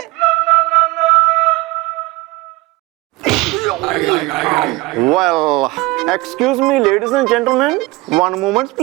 Well, excuse me, ladies and gentlemen, one moment,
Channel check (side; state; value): left; quieter; 21.5 dB